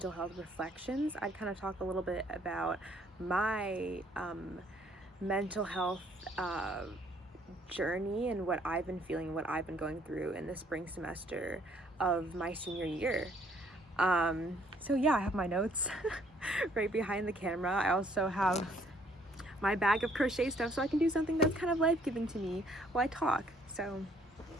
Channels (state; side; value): normal; both; correlation 0.64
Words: health reflections, I'd kind of talk a little bit about my mental health journey and what I've been feeling, what I've been going through in the spring semester of my senior year. So yeah, I have my notes right behind the camera. I also have my bag of crochet stuff so I can do something that's kind of life-giving to me while I talk. So